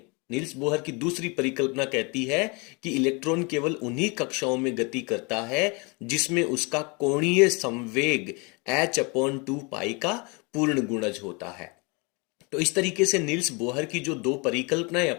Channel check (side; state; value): right; quieter; 29.9 dB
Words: नील्स बोहर की दूसरी परिकल्पना कहती है कि इलेक्ट्रॉन केवल उन्हीं कक्षाओं में गति करता है जिसमें उसका कोणीय संवेग h/2 का पूर्ण गुणज होता है। तो इस तरीके से नील्स बोहर की जो 2 परिकल्पनाएं